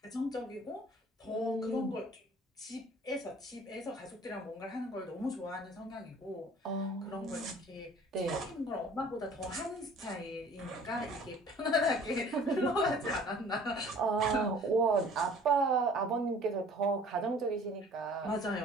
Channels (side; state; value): both; normal; correlation 0.51